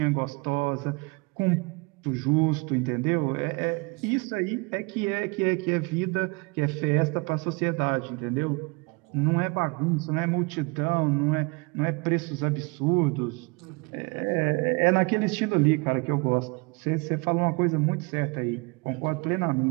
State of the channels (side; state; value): left; quieter; 28.5 dB